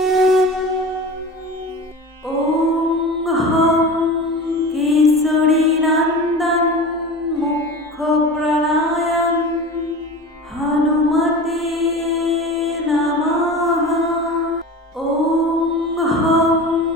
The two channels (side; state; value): both; normal; correlation 0.33